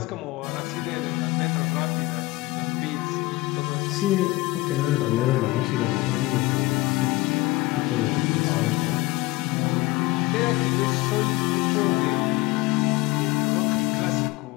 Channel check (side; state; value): right; quieter; 20.2 dB